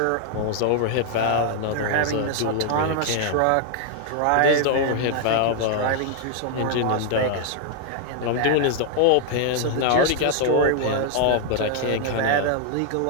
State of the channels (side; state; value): both; different; correlation 0.00